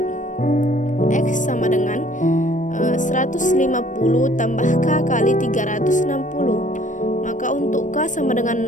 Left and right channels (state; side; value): late; right; 0.37 ms